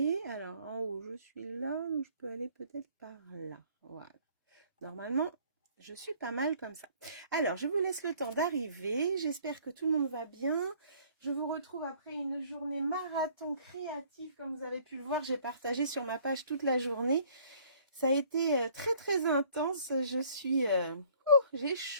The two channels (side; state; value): both; inverted; correlation -0.57